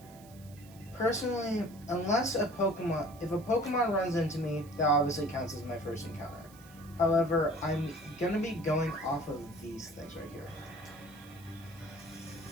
Personally, unless if a Pokemon runs into me, that obviously counts as my first encounter. However, I'm gonna be going off of these things right here.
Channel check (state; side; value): noise; right; hiss, 23 dB below the sound